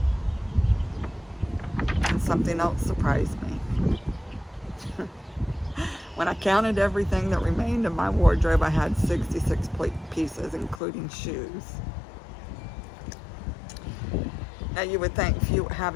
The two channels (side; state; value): right; drops out; at 10.8 s